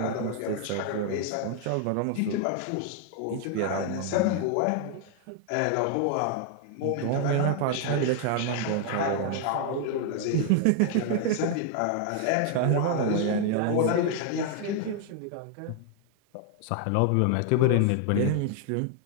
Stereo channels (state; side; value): different; both; correlation 0.00